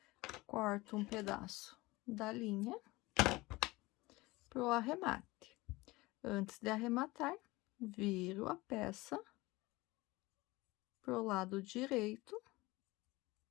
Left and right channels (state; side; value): quieter; right; 21.1 dB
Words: Corto um pedaço da linha pro arremate. Antes de arrematar, viro a peça pro lado direito,